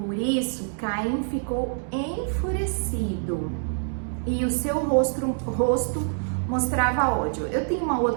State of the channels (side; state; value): left; silent; 61 dB below the other